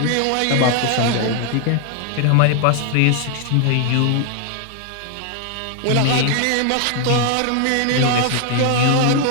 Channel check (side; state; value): both; different; correlation 0.00